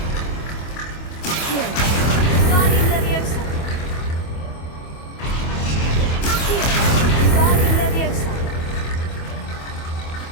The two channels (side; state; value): right; late; 25 ms